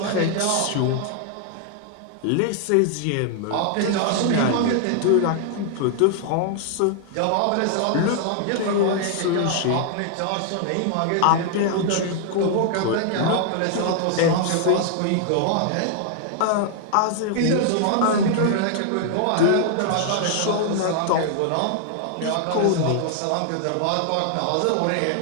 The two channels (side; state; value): both; different; correlation 0.00